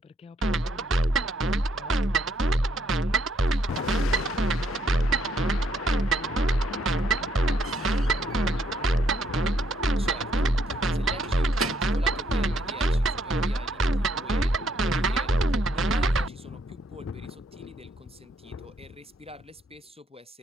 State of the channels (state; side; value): normal; both; correlation 0.71